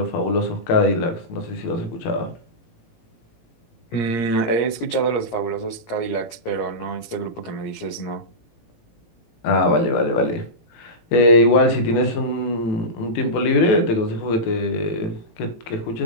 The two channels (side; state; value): right; late; 17 ms